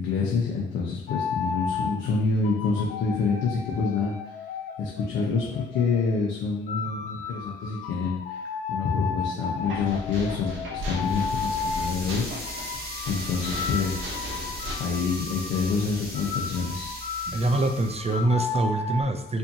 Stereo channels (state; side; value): quieter; right; 3.1 dB